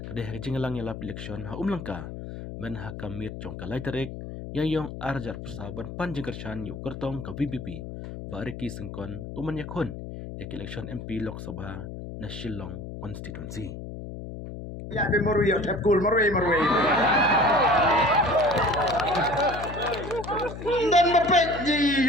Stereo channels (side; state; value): left; noise; hum, 9 dB below the sound